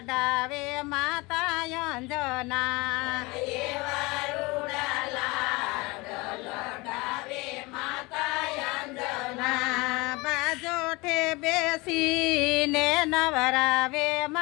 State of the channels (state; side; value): quieter; right; 24.3 dB